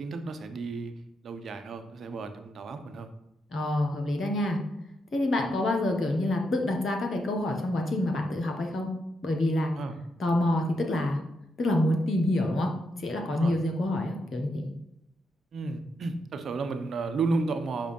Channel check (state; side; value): normal; both; correlation 0.81